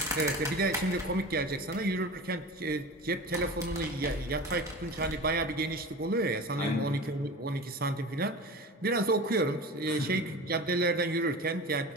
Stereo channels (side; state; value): both; normal; correlation 0.33